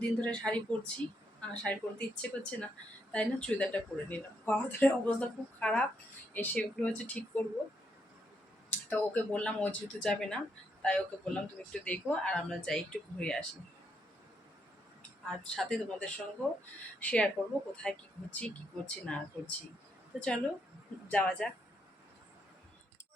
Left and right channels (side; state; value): both; normal; correlation 0.77